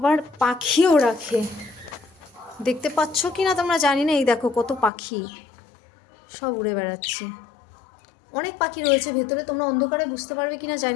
পাখিও রাখে, দেখতে পাচ্ছ কিনা তোমরা জানি না। এই দেখো কত পাখি, সব উড়ে বেড়াচ্ছে। অনেক পাখি রয়েছে ভেতরে, তোমরা অন্ধকারে বুঝতে পারবে কিনা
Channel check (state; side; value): drops out; right; at 4.9 s